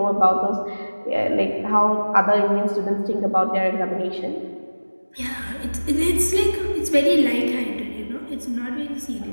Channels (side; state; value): both; inverted; correlation -1.00